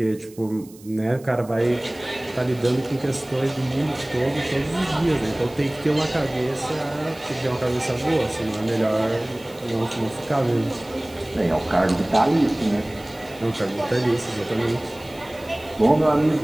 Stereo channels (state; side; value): noise; right; hiss, 23 dB below the sound